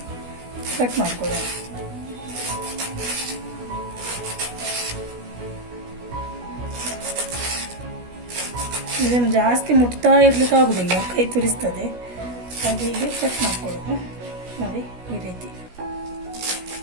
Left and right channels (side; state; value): left; late; 16 ms